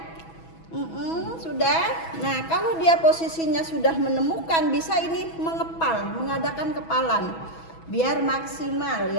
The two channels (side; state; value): right; late; 6.1 ms